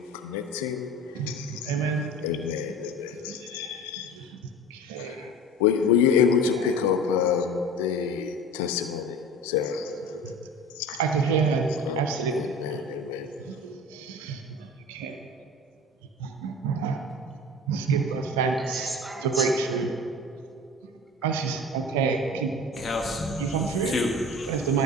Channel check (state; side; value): normal; both; correlation 0.36